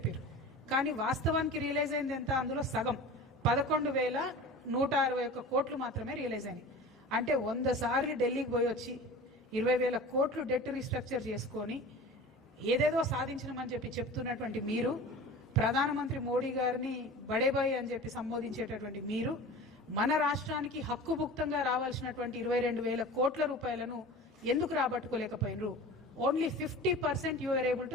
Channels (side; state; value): both; normal; correlation 0.36